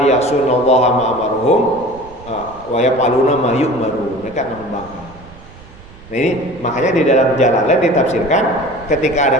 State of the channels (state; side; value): noise; right; rumble, 21 dB below the sound